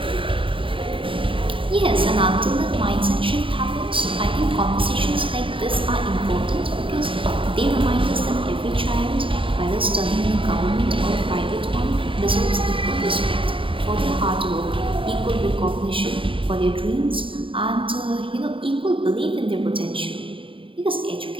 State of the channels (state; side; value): late; left; 0.25 ms